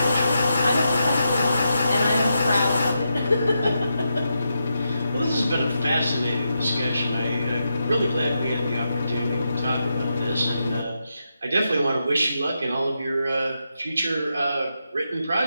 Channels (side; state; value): both; inverted; correlation -0.85